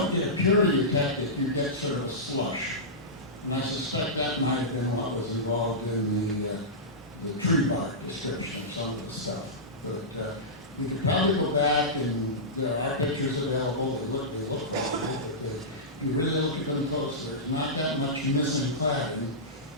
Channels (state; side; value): normal; both; correlation -0.15